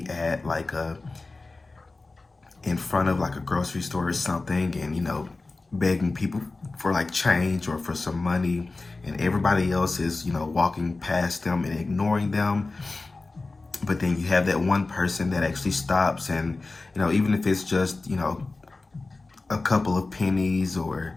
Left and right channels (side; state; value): right; quieter; 3.5 dB